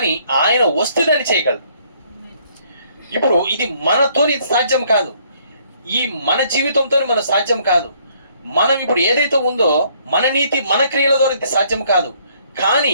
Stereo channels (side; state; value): both; inverted; correlation -0.64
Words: ఆయన వస్తే దాన్ని చేయగలడు. ఇప్పుడు ఇది మనతోని సాధ్యం కాదు, ఈ మన జీవితంతో మన సాధ్యం కాదు. మనం ఇప్పుడు ఏదైతే ఉందో మన నీతి మన క్రియల ద్వారా ఇది సాధ్యం కాదు, కానీ